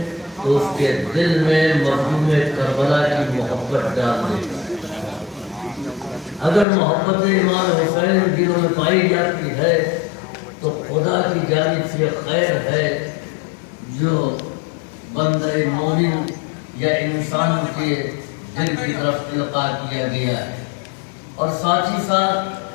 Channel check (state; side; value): drops out; right; at 6.7 s